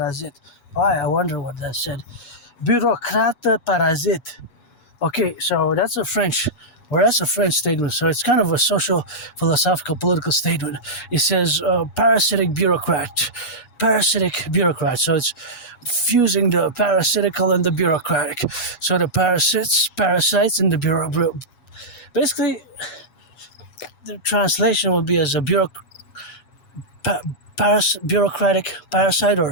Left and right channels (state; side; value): late; right; 8.2 ms